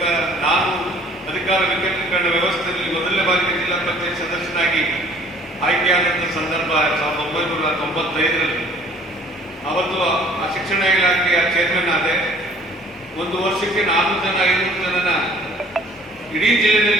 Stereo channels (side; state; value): both; normal; correlation 0.54